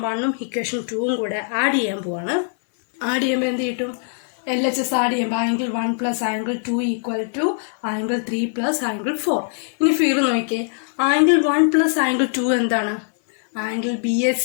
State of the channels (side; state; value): right; silent; digital silence